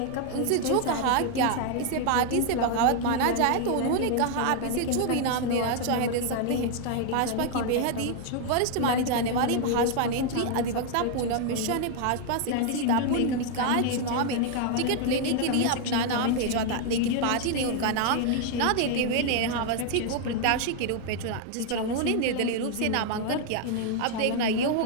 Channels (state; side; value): different; both; correlation 0.00